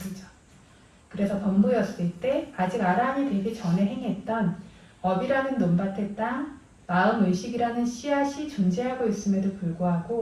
그래서 범부였을 때 아직 아라한이 되기 전에 행했던 업이라는 논밭의 땅, 마음 의식이라는 씨앗이 존재하고 있음에도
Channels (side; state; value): both; identical; correlation 1.00